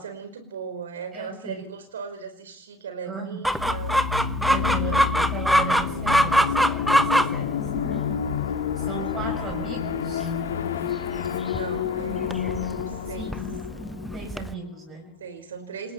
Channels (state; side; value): normal; both; correlation 0.49